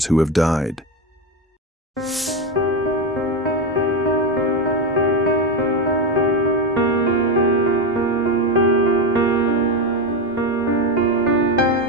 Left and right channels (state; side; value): normal; both; correlation 0.12